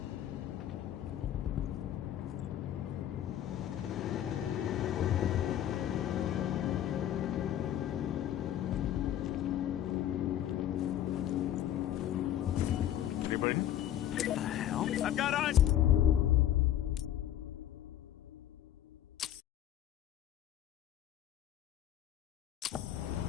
Anybody? What the hell? I've got eyes!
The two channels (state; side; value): quieter; right; 11.5 dB